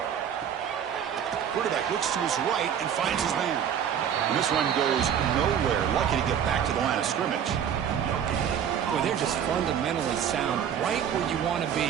Quarterback looks to his right and finds his man. And this one goes nowhere. Lucky to get back to the line of scrimmage. Boy, they're just fundamentally sound, right where you want to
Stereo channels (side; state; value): left; quieter; 8.7 dB